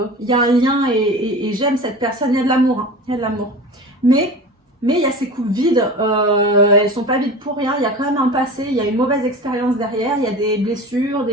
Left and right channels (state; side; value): normal; both; correlation 0.34